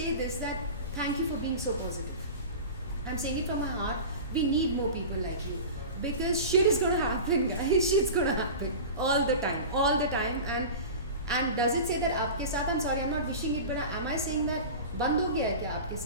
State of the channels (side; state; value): both; inverted; correlation -0.32